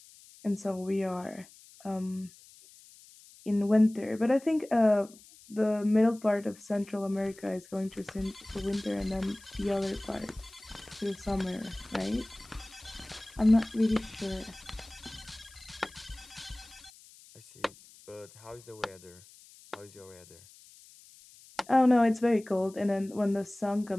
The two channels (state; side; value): noise; left; hiss, 23 dB below the sound